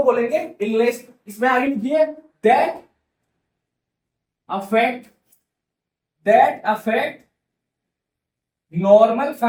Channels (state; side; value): identical; both; correlation 1.00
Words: बोलेंगे इलनेस। इसमें आगे लिखिए, that affect that affect normal